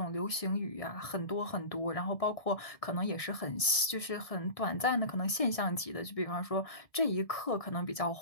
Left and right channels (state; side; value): late; right; 1.7 ms